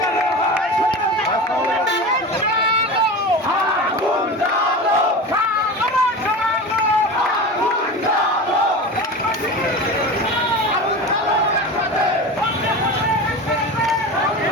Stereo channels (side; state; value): both; normal; correlation 0.29